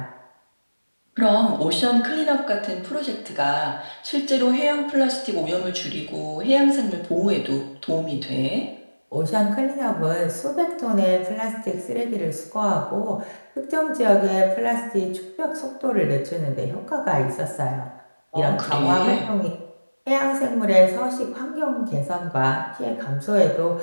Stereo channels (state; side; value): inverted; both; correlation -1.00